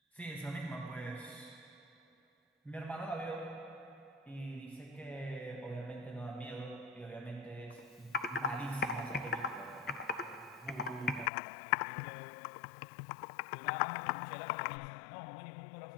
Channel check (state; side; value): drops out; right; at 11.3 s